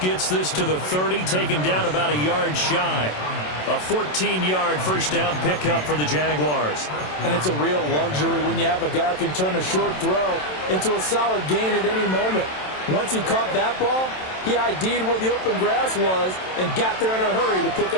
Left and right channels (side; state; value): right; late; 27 ms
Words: this to the 30, taken down about a yard shy. A 14-yard first down pickup for the Jaguars. And it's a real luxury when you have a guy who can turn a short throw into a solid gain at any moment. Once he caught that ball, he ID'd where the open grass was and got there in a hurry to pick